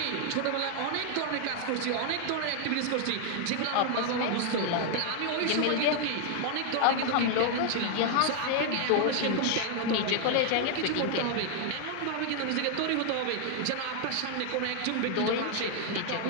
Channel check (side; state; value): both; different; correlation 0.00